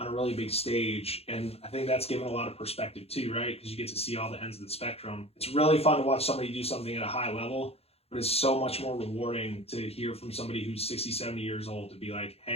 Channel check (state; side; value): late; right; 0.29 ms